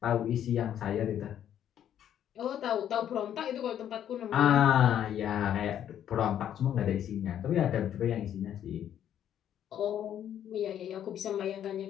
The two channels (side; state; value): right; quieter; 10.2 dB